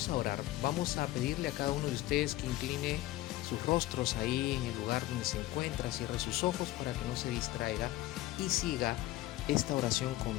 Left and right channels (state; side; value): quieter; right; 16.4 dB